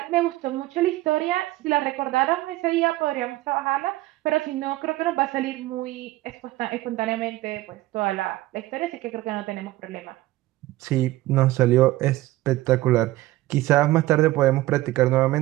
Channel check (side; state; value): left; quieter; 17.4 dB